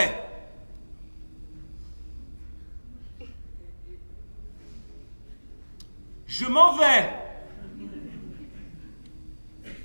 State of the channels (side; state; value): both; inverted; correlation -1.00